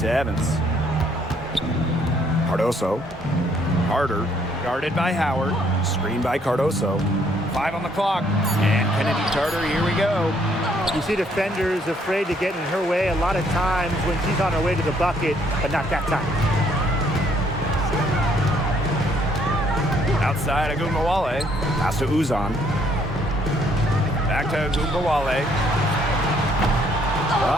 Evans. Cardoso. Carter. Guarded by Howard. Screen by Cardoso. 5 on the clock. And Kennedy Tarter, here we go. You see defenders afraid to get in her way a lot of times when she's on her way to the bucket, but not that time. Outside Agumbawale. Pass to Uzan. Back to Agumbawale.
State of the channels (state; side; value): normal; both; correlation 0.66